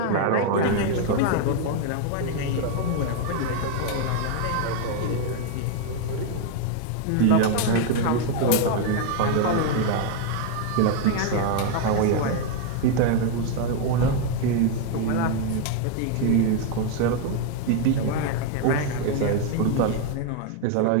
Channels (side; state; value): both; different; correlation 0.00